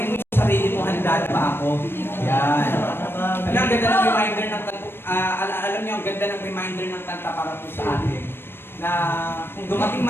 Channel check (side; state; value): right; late; 0.11 ms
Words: mo yung sarili mo, handa na ba ako? Yan. Alam, ang ganda ng reminder ng alam niyo, ang ganda ng reminder ng kanta para po sa atin na kung dumating